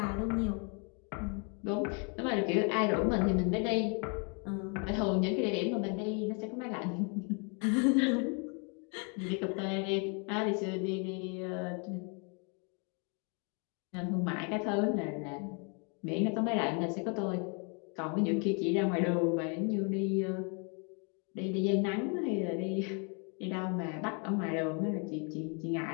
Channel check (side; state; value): right; quieter; 36.7 dB